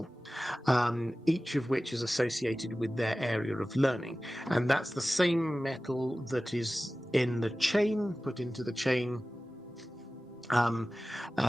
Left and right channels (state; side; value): normal; both; correlation 0.96